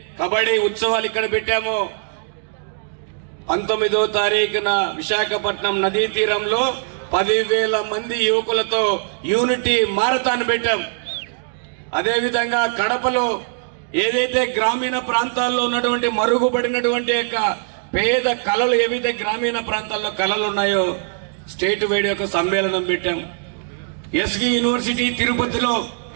కబడ్డీ ఉత్సవాలు ఇక్కడ పెట్టామో 19వ తారీఖున విశాఖపట్నం నదీ తీరంలో 10,000 మంది యువకులతో యూనిటీ మారథాన్ పెట్టాం. అదేవిధంగా కడపలో ఏదైతే గ్రామీణ ప్రాంతాల్లో ఉన్నటువంటి మరుగుపడినటువంటి యొక్క పేద కళలు, ఏవైతే గ్రామీణ ప్రాంతాల్లో కళలు ఉన్నాయో స్టేట్ వైడ్ యొక్క సమ్మేళనం పెట్టాం. ఎస్వి యూనివర్సిటీ తిరుపతిలో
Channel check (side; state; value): left; silent; digital silence